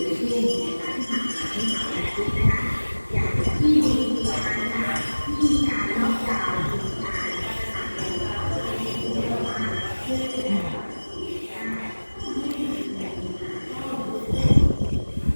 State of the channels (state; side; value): inverted; both; correlation -1.00